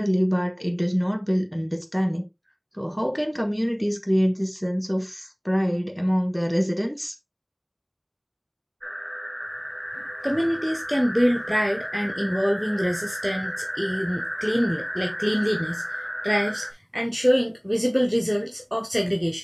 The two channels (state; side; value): identical; both; correlation 1.00